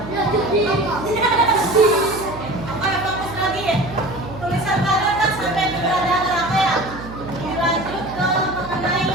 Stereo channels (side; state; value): right; noise; hum, 12 dB below the sound